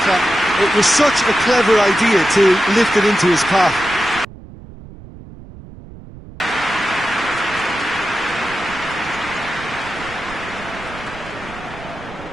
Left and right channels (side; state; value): right; noise; rumble, 17 dB below the sound